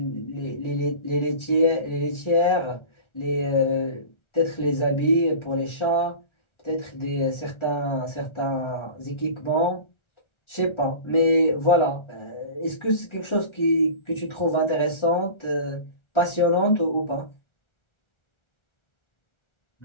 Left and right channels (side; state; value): right; late; 1.4 ms